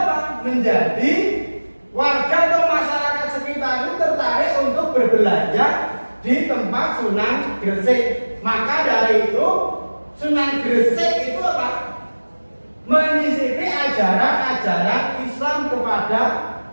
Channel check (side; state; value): both; inverted; correlation -1.00